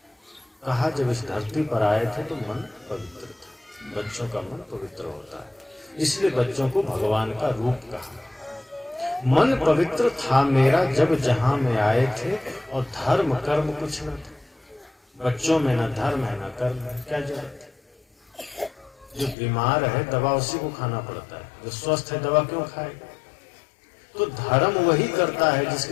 कहा जब इस धरती पर आए थे तो मन पवित्र था। बच्चों का मन पवित्र होता है, इसलिए बच्चों को भगवान का रूप कहा। मन पवित्र था मेरा जब जहां में आए थे, और धर्म कर्म कुछ न थे। बच्चों में न धर्म है न कर्म है, क्या जरूरत है। जो बीमार है दवा उसी को खाना पड़ता है, जो स्वस्थ है दवा क्यों खाएगा। तो धर्म वही करता है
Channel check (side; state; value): right; drops out; at 19.4 s